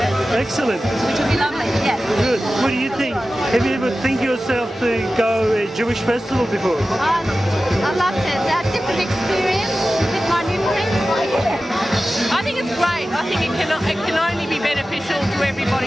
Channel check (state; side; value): normal; both; correlation 0.95